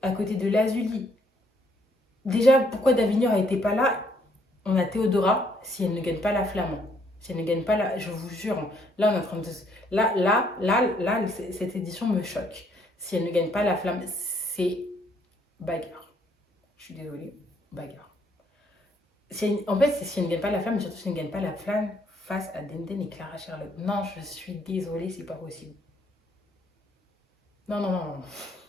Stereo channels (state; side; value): normal; both; correlation 0.68